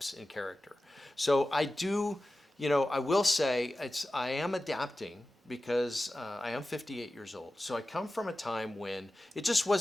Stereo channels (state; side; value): normal; both; correlation 0.95